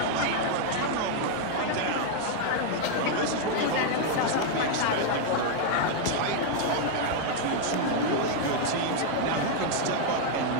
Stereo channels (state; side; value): different; both; correlation 0.00